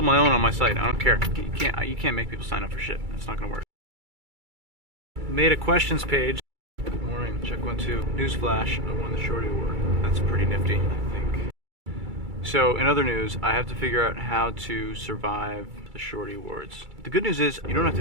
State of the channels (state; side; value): late; left; 2.3 ms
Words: my own on my site. I don't care. You can't make people sign up for shit. That's not gonna work. Made a questions page. Good morning. Check 1, 2. Newsflash. I won the Shorty Award. That's pretty nifty, I think. So, in other news, I have to figure out how to survive the Shorty Awards. The good news is, you don't have